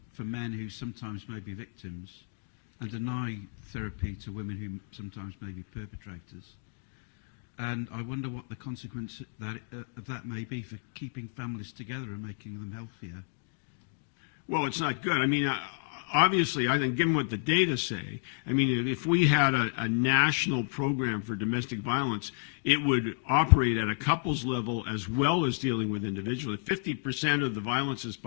for men who sometimes may be victims and deny therapy to women who sometimes may be perpetrators. and I wonder what the consequence of that may be for keeping families together and making them healthier. Well, it's not good. I mean, obviously, I think given what the data say, I mean, if we had a national program for domestic violence, it would operate at a couples level as well as dealing with individuals. If 50% of the violence is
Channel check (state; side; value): silent; right; digital silence